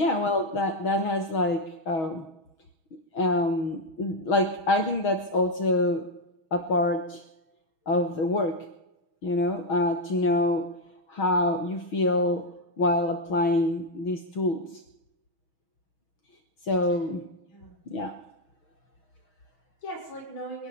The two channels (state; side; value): late; right; 6.3 ms